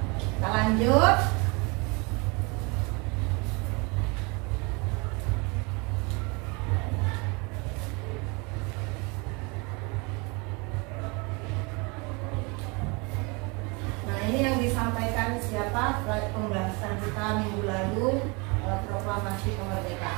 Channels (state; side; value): quieter; left; 29.2 dB